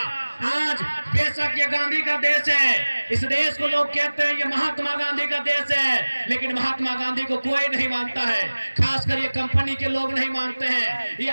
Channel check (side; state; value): both; inverted; correlation -1.00